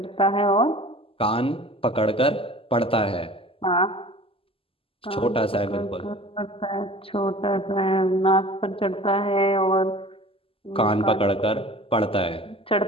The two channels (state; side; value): late; right; 0.26 ms